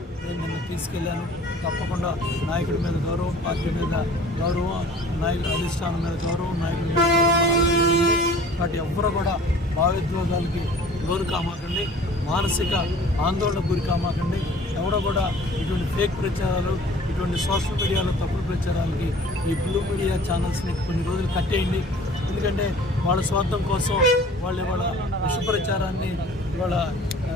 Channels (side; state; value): both; normal; correlation 0.48